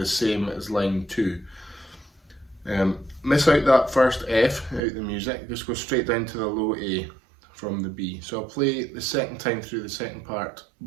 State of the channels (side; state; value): left; drops out; at 4.8 s